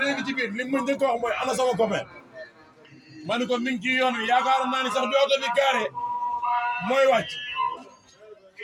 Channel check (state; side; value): identical; both; correlation 1.00